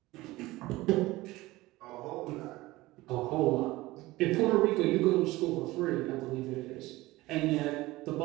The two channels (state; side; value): quieter; left; 19.1 dB